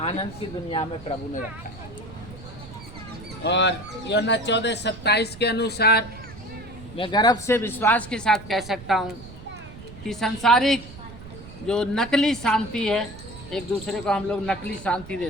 आनंद की दुनिया में प्रभु ने रखा है। और यूहन्ना 14:27 के अनुसार मैं गर्व से विश्वास के साथ कह सकता हूँ कि सांसारिक जो नकली शांति है, एक दूसरे को हम लोग नकली शांति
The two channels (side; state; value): right; noise; rumble, 16 dB below the sound